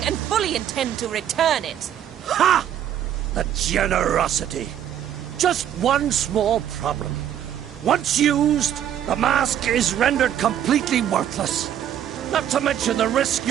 and fully intend to return it. Ha! The generosity. Just one small problem. Once used, the mask is rendered completely worthless. Not to mention the risk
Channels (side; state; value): left; quieter; 10.3 dB